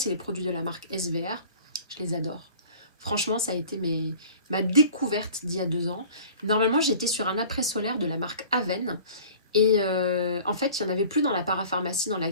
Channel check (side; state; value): both; inverted; correlation -0.46